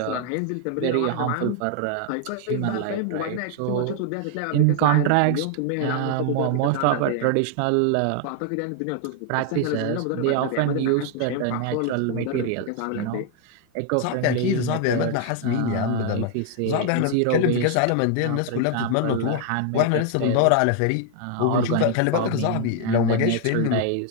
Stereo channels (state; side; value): different; both; correlation 0.00